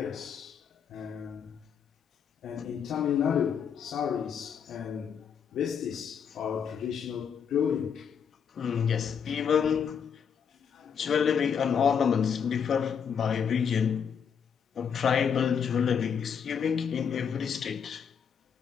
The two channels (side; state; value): right; quieter; 7.3 dB